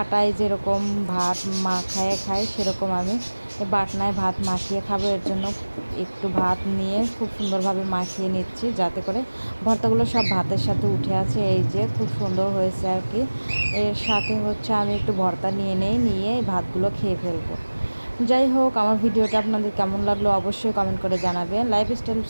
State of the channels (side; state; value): both; inverted; correlation -1.00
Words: যেরকম ভাত মাখায় খাই, সেরকম আমি বাটনায় ভাত মাখিয়ে খাবো। এর জন্য একটু ভাত নিয়ে খুব সুন্দরভাবে মাখিয়ে নিচ্ছি, যাতে করে ভর্তাগুলো সব ভাতের সাথে উঠে আছে। এই যে খুব সুন্দর হয়েছে আর কি। এর সাথে আমি একটু ভর্তা নিয়ে ভাতগুলো খেয়ে ফেলবো। যাই হোক, আমার ভিডিওটা আপনাদের কেমন লাগলো অবশ্যই কমেন্ট করে জানাবেন। লাইফস্টাইল